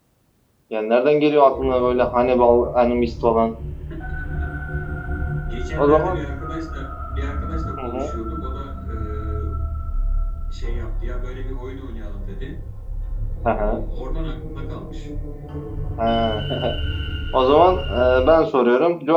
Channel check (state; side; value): identical; both; correlation 1.00